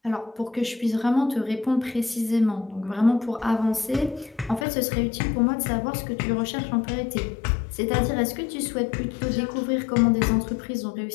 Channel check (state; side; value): drops out; right; at 4.7 s